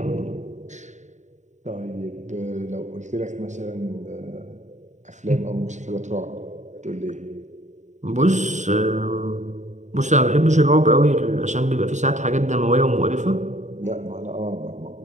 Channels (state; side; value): late; left; 0.34 ms